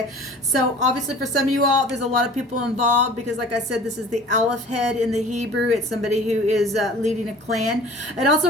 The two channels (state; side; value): normal; both; correlation 0.45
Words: So obviously for some of you all, there's a lot of people involved because, like I said, this is the Aleph head in the Hebrew. It's somebody who is leading a clan. It